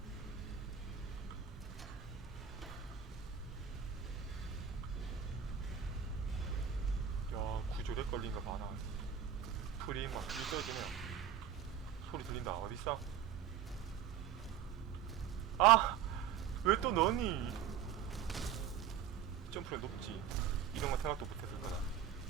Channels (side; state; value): left; quieter; 8.8 dB